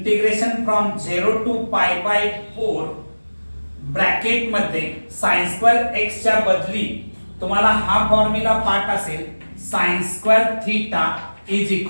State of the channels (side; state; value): both; inverted; correlation -1.00